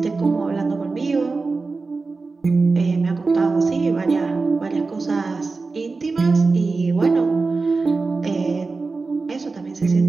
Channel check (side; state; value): left; quieter; 4.0 dB